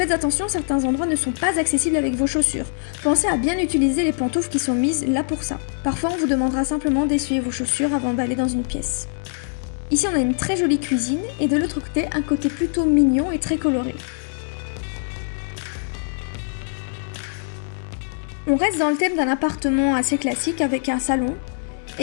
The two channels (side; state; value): right; silent; 62 dB below the other